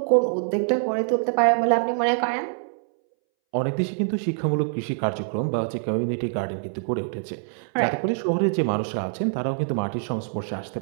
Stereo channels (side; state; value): left; silent; 62 dB below the other